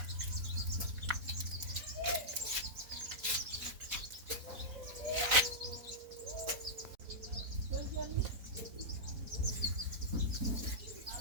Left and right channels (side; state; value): left; late; 4.0 ms